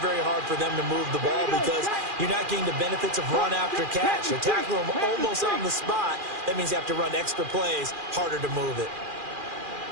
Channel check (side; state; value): left; late; 2.4 ms